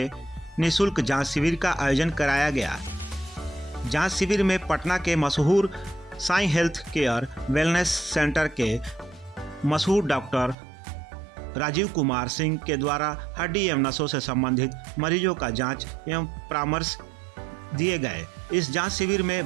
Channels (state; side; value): drops out; left; at 10.6 s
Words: निःशुल्क जांच शिविर का आयोजन कराया गया। जांच शिविर में पटना के मशहूर Sai health care wellness centre के मशहूर डॉक्टर राजीव कुमार सिंह के द्वारा हड्डी एवं नसों से संबंधित मरीजों का जांच एवं परामर्श दिए गए। इस जांच शिविर